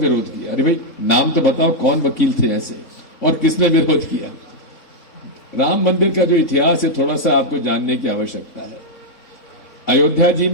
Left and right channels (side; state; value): right; late; 4.0 ms